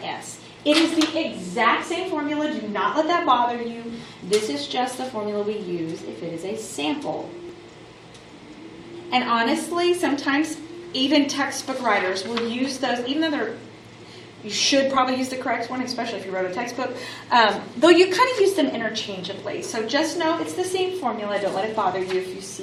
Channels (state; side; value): identical; both; correlation 1.00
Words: s. It is the exact same formula. Do not let that bother you. This is just the formula we use if it is a sample. And honestly, sometimes even textbook writers will use those, even though you should probably use the correct one, especially if you wrote a textbook, though you kind of use them interchangeably. So just know it's the same formula. Don't let it bother you if you